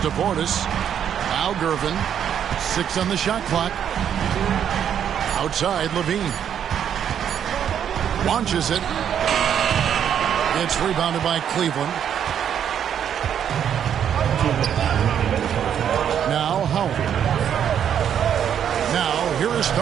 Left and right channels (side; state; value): left; quieter; 9.0 dB